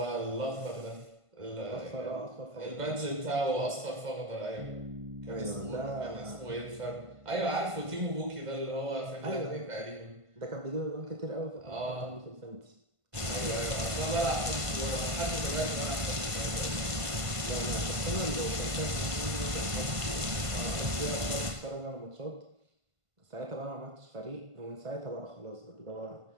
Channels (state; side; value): late; left; 1.5 ms